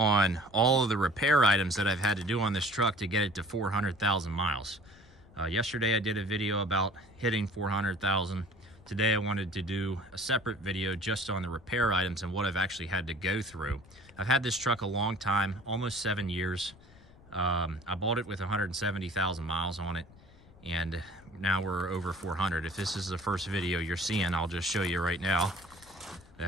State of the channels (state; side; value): noise; left; rumble, 24 dB below the sound